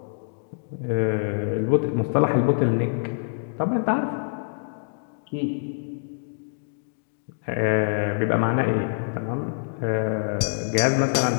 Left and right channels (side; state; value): right; silent; digital silence